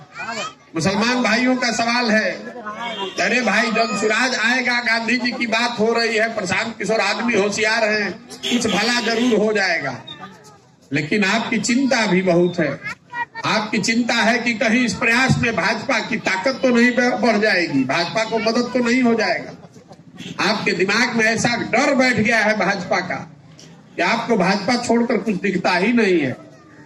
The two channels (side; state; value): both; identical; correlation 1.00